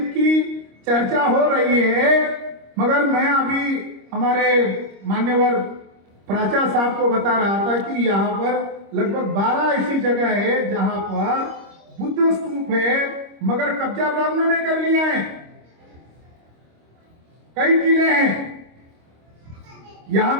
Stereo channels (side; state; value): left; late; 25 ms